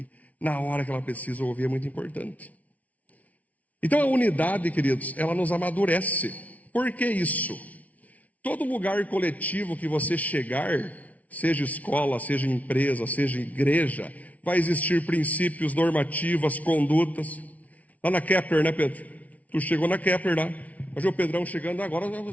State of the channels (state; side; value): late; right; 0.070 ms